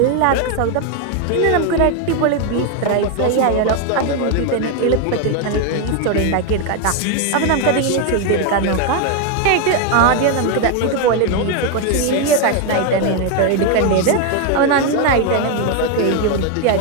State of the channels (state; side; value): different; both; correlation 0.01